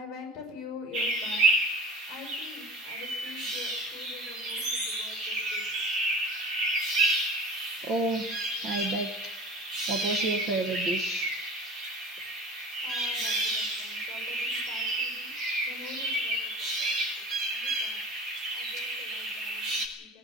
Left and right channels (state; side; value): normal; both; correlation 0.39